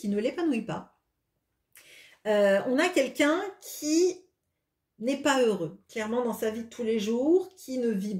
ne l'épanouit pas. On a quelqu'un qui n'est pas heureux, clairement dans sa vie de tous les jours, qui ne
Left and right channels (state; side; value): identical; both; correlation 1.00